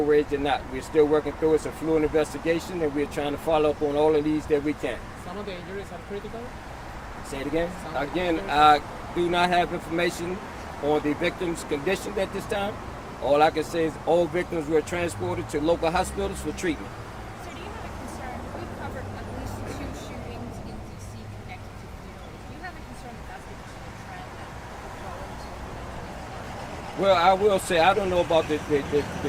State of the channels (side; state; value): both; identical; correlation 1.00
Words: rage or not. We're still working through it. It's a fluid investigation, and we're trying to follow up on all of these that we can. Some of the injuries are critical. Say it again. Again, I do not have information on the victim's condition at this time. All I can say is all victims were transported to local hospitals for treatment. So do you have a concern? We've covered at least 2 shootings in D.C. connected to funerals. Do you have a concern that that's going to be a trend that will go into? Well, I will say I don't know about the